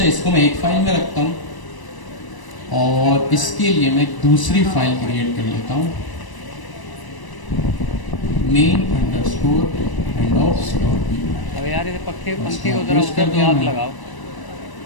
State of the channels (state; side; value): late; right; 1.0 ms